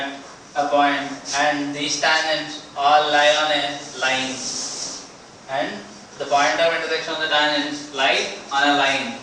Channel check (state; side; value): identical; both; correlation 1.00